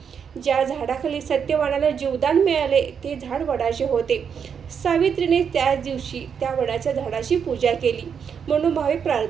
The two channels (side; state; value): left; quieter; 7.1 dB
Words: ज्या झाडाखाली सत्यवानाला जीवदान मिळाले ते झाड वडाचे होते. सावित्रीने त्याच दिवशी त्या वडाच्या झाडाची पूजा केली, मनोभावे